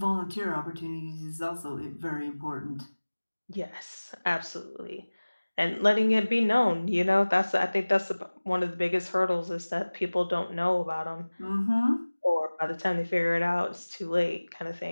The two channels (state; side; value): inverted; both; correlation -1.00